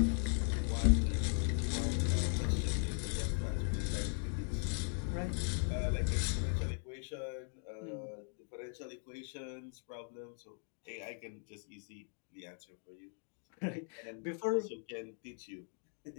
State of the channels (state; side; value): silent; right; 52 dB below the other